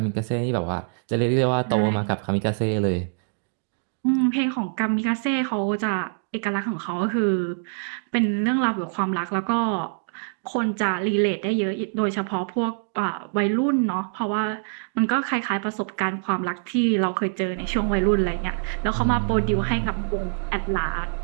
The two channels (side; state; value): left; silent; digital silence